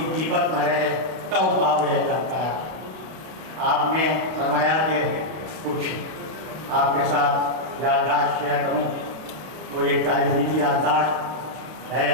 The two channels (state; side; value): late; left; 31 ms